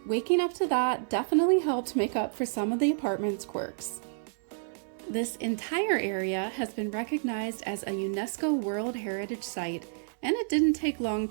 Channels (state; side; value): silent; left; digital silence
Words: Waking up to that definitely helped make up for some of the apartment's quirks. This entire area has been recognized as a UNESCO World Heritage Site, and it didn't take long